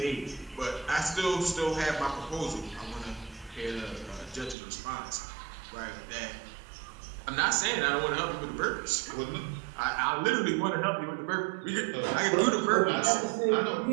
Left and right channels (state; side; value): drops out; left; at 4.5 s